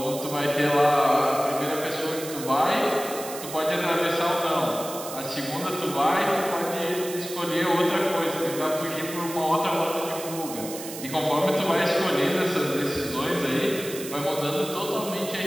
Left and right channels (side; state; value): right; noise; hiss, 11 dB below the sound